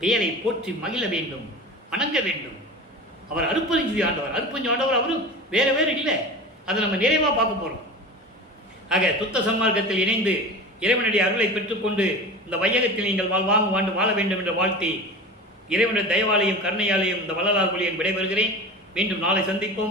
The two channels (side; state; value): both; normal; correlation 0.33